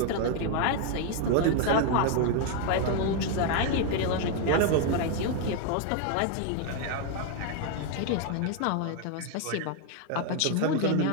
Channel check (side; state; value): both; different; correlation 0.00